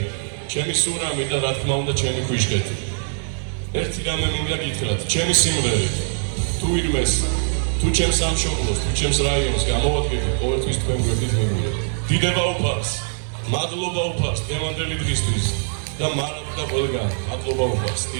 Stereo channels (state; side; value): silent; left; digital silence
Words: ჩემი სურამი და რა თქმა უნდა ჩემი ქვიშკეთი. ერთი რამე მინდა გითხრათ, ჩემი სიმღერით თუ ვინმეს, თუ ჩემს სამშობლოს, თუ ჩემს რაიონს გამოვადგებით, ყოველთვის თქვენ გვერდით მივიდეთ. დიდება უფალს, მადლობა უფალს დღევანდელი დღისთვის და მარად და ყველგან მადლობა უფალს.